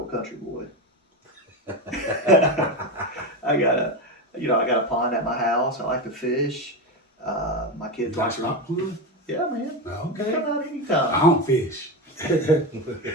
country boy. I got a pond at my house. I like to fish. My kids like to. Stop playing? Yeah, man. Okay. Come out anytime. I don't fish. I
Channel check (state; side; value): normal; both; correlation 0.16